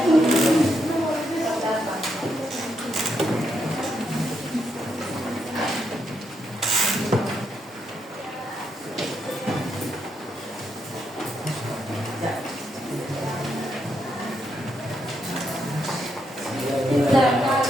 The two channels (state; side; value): normal; both; correlation 0.79